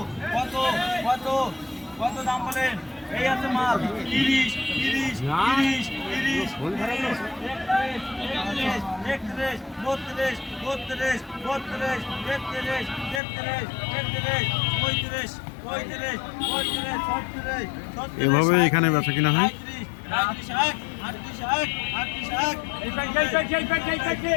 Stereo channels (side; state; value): right; drops out; at 13.2 s